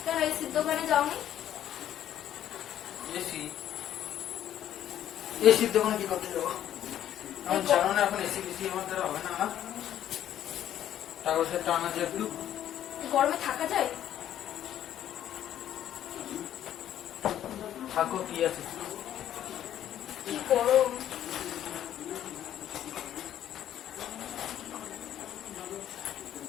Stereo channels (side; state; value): right; quieter; 11.2 dB